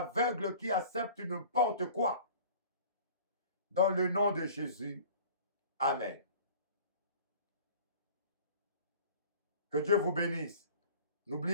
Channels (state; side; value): inverted; both; correlation -0.46